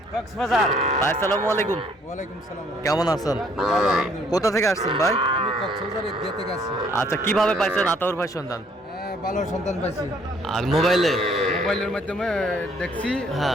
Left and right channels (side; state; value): both; normal; correlation 0.63